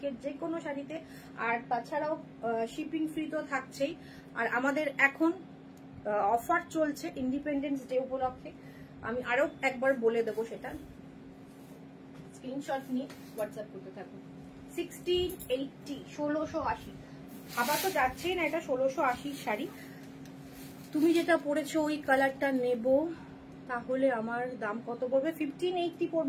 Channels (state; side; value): identical; both; correlation 1.00